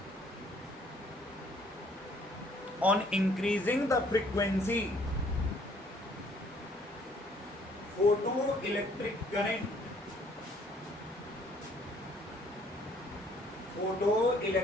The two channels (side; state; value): both; normal; correlation 0.61